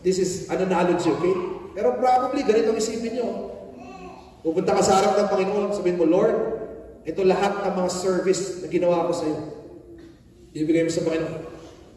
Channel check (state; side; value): identical; both; correlation 1.00